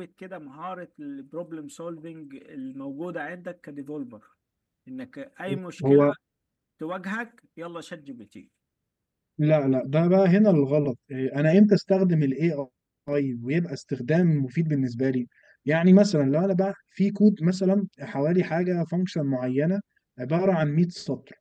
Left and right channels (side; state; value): both; identical; correlation 1.00